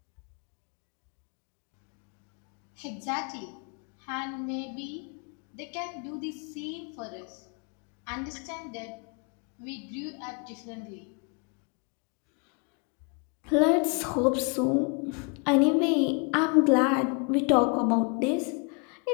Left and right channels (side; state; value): right; quieter; 35.0 dB